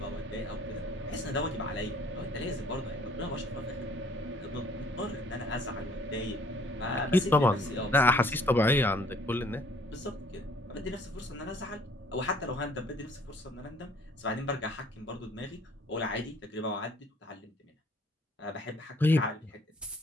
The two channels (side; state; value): both; normal; correlation 0.59